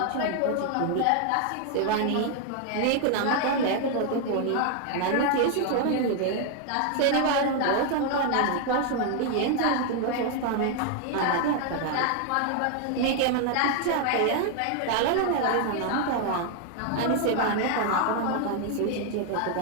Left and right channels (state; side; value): different; both; correlation 0.00